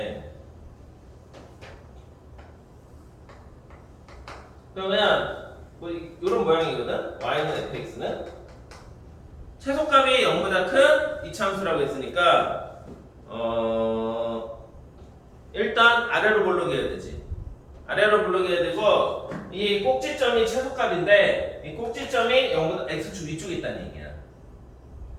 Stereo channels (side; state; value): both; identical; correlation 1.00